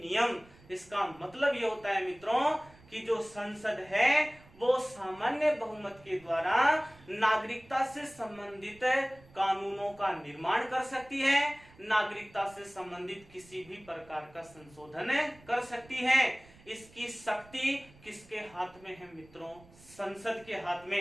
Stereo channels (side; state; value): right; noise; rumble, 25 dB below the sound